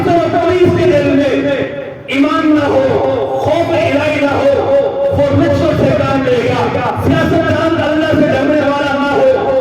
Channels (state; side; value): identical; both; correlation 1.00